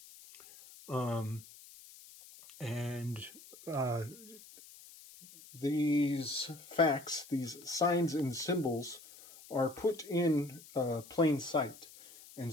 These facts, these signs and symbols are put in plain sight. And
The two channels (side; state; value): left; noise; hiss, 19 dB below the sound